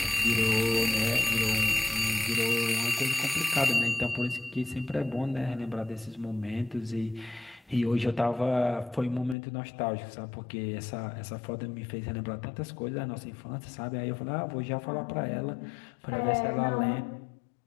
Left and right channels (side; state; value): right; drops out; at 9.3 s